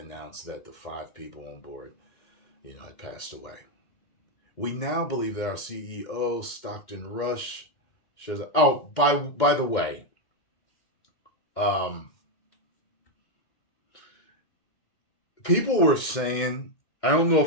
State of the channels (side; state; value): right; late; 2.1 ms